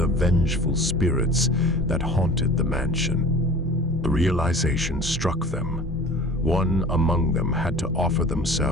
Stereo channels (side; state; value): both; normal; correlation 0.42